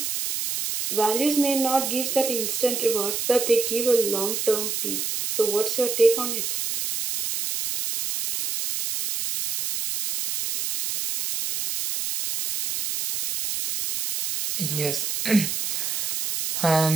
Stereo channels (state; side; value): noise; right; hiss, 2 dB below the sound